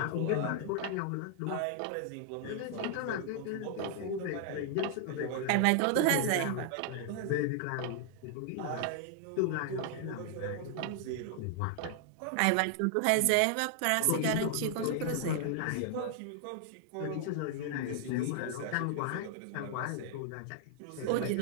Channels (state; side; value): different; both; correlation 0.00